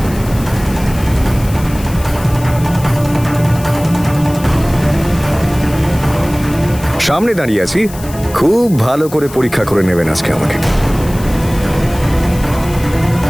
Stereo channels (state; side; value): noise; left; hiss, 16 dB below the sound